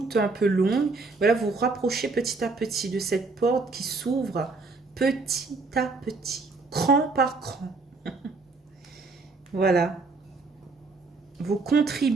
un peu longue. Voilà, vous vous rapprochez petit à petit de cette porte qui s'ouvre petit à petit, cran par cran. Voilà. Vous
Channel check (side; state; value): left; quieter; 3.8 dB